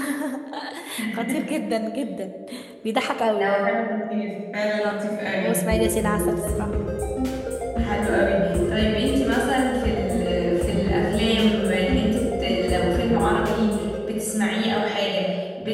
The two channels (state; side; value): identical; both; correlation 1.00